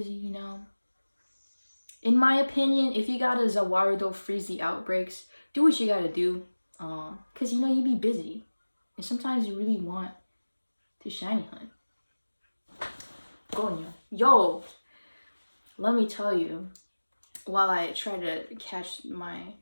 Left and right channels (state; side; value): inverted; both; correlation -1.00